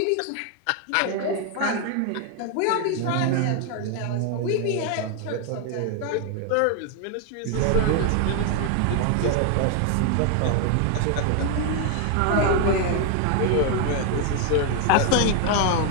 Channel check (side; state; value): both; different; correlation 0.00